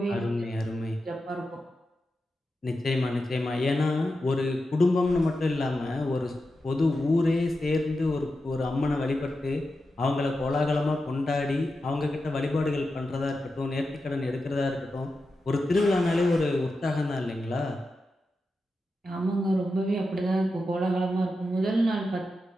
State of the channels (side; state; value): both; normal; correlation 0.90